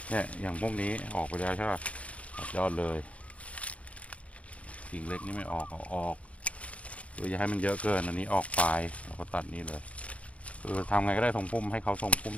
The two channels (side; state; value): right; late; 0.064 ms